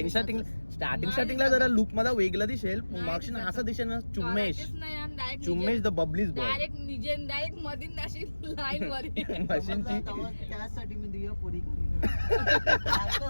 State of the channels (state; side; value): inverted; both; correlation -1.00